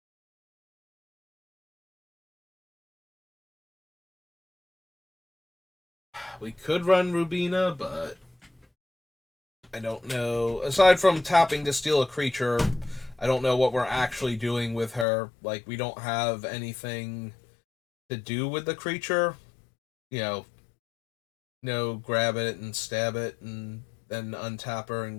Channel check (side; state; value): right; drops out; at 15.1 s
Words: We could run Rubina, but I don't know. Aside from tapping to steal a creature, I don't know what we're actually doing with her. Like, we don't have anything to do with the creature. You know, no, grab it and stab it and then untap her and